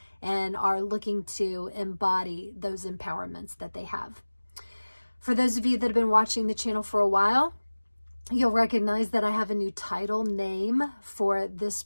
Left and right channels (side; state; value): both; inverted; correlation -1.00